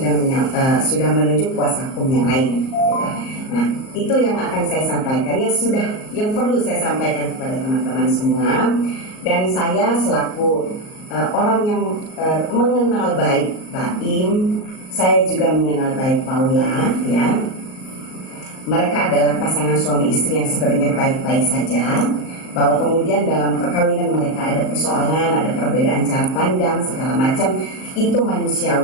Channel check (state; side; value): late; right; 38 ms